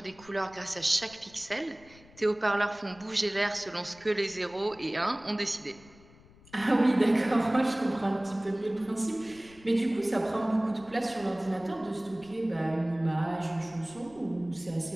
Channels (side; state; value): left; noise; rumble, 24 dB below the sound